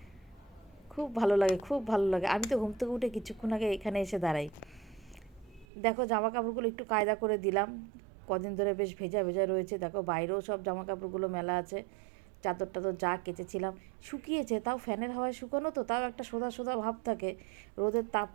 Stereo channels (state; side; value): drops out; left; at 5.7 s